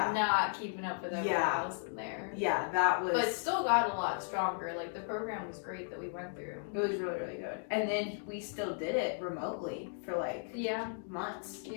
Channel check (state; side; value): silent; right; digital silence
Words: keeping up with everyone Yeah. else in there. Yeah, that was. But still got a lot stronger. Like the program was great that we went through. It was really, really good. And then we still did it remotely for like Yeah. months.